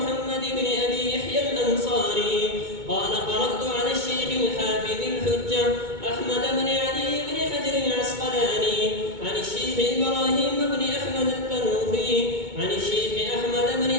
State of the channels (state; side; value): late; left; 2.2 ms